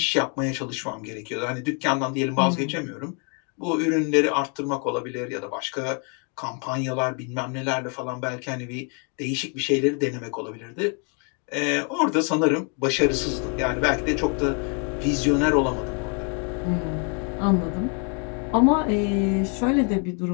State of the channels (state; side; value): quieter; right; 37.5 dB